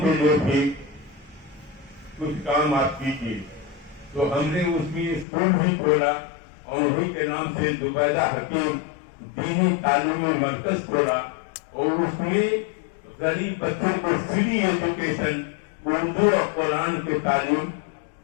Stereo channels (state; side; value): drops out; right; at 5.2 s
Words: کے لیے بھی کچھ کام آپ کیجیے. تو ہم نے اس میں اسکول بھی کھولا اور انہیں کے نام سے زبیدہ حکیم دینی تعلیمی مرکز کھولا، اور اس میں غریب بچوں کو فری ایجوکیشن اردو اور قرآن کی تعلیم